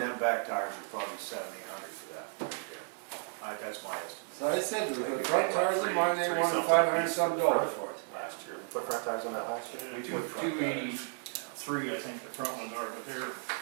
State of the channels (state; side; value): silent; left; 55 dB below the other